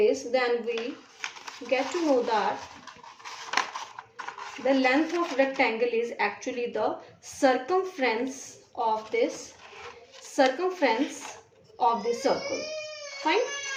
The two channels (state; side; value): identical; both; correlation 1.00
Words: then we get to know that the length of rectangle is actually the circumference of this circle. Fine.